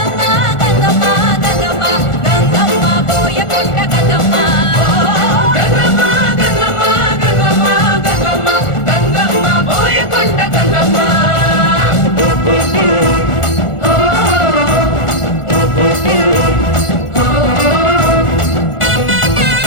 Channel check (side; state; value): right; late; 1.4 ms